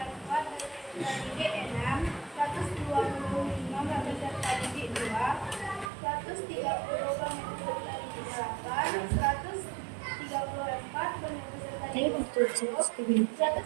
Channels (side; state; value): left; drops out; at 5.9 s